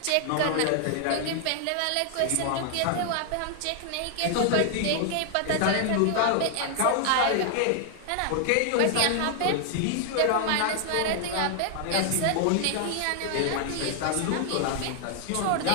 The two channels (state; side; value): different; both; correlation 0.00